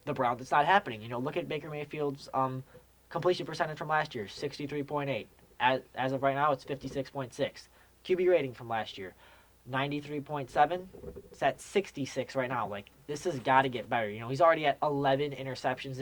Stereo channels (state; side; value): identical; both; correlation 1.00